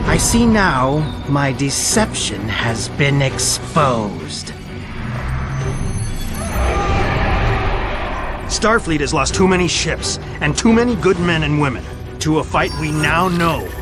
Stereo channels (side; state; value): both; identical; correlation 1.00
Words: I see now my deception has been exposed. Starfleet has lost too many ships and too many good men and women to a fight we now know